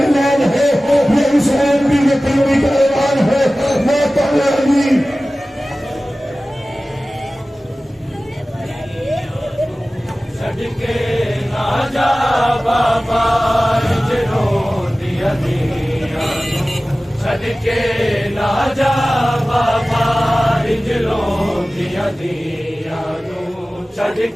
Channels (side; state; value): both; normal; correlation 0.97